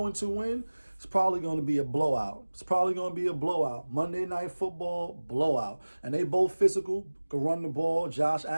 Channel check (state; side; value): inverted; both; correlation -1.00